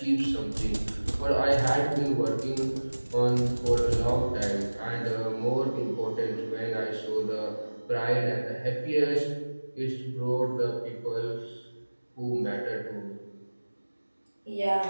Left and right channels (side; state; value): both; inverted; correlation -1.00